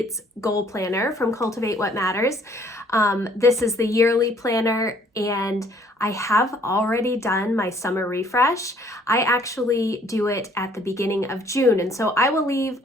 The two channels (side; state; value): both; normal; correlation 0.60